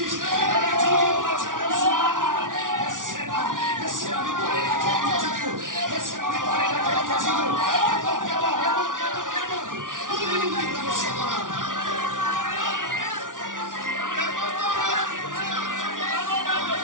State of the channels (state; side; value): late; left; 0.88 ms